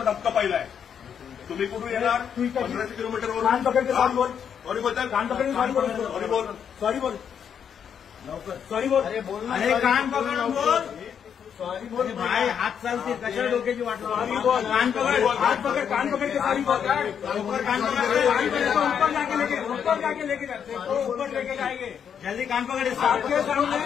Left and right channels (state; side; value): quieter; right; 7.9 dB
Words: धक्का पाहिलाय. तुम्ही कुठून येणार 1500 किलोमीटरवर कान पकड सॉरी बोल. सॉरी बोलताय कान पकड सॉरी बोल. सॉरी बोल सॉरी बोल लवकर सॉरी बोल. अरे बोल. अरे कान पकड बोल. सॉरी बोल भाई. हात चालते कशा डोक्याची वाट. सॉरी बोल. कान पकड. हात पकड. कान पकड के सॉरी बोल. ऊपर कान पकड़. ऊपर जाके लेके जाते तो ऊपर लेके जाएंगे. जल्दी कान पकड़. सामने